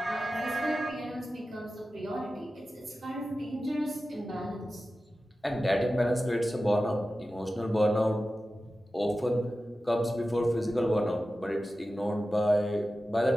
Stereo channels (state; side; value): normal; both; correlation 0.94